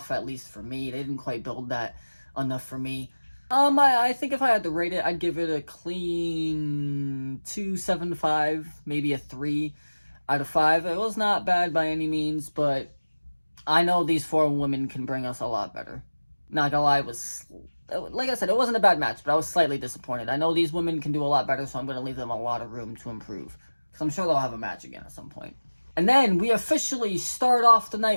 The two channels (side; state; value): both; inverted; correlation -1.00